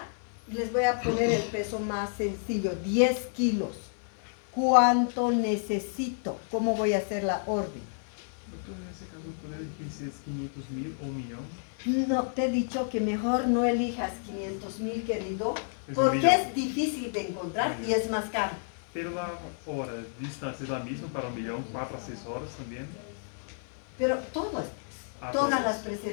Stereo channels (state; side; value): silent; right; 55 dB below the other